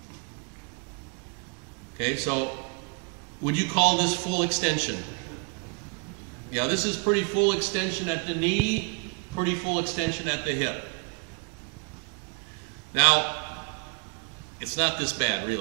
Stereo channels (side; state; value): left; quieter; 35.7 dB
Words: Okay, so would you call this full extension? Yeah, this is pretty full extension at the knee, pretty full extension at the hip. Now, it's not this bad,